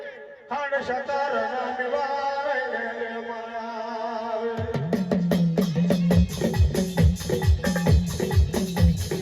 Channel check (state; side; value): identical; both; correlation 1.00